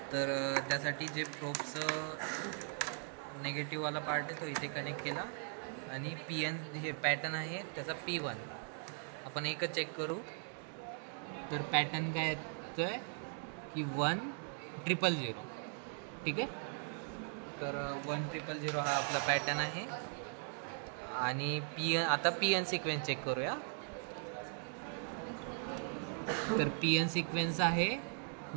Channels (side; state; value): left; silent; 52 dB below the other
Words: तर त्यासाठी जे प्रोबचं नेगेटिव्हवाला पार्ट आहे तो इथे कनेक्ट केला आणि PN हे पॅटर्न आहे त्याचा P1 आपण एकच चेक करू. तर पॅटर्न काय येतोय की 1000. ठीक आहे. तर 1000 हा आपला पॅटर्न आहे आणि आता PN सिक्वेन्स चेक करूया. तर PN सिक्वेन्स आहे